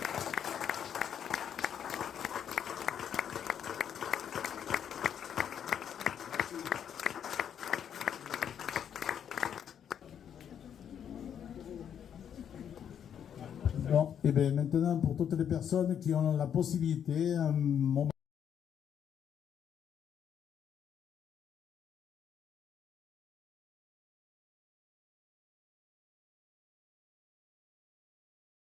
Bon, et bien maintenant, pour toutes les personnes qui ont la possibilité, un moment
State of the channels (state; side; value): quieter; right; 8.7 dB